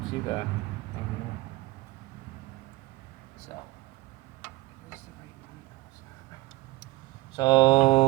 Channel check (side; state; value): left; quieter; 19.1 dB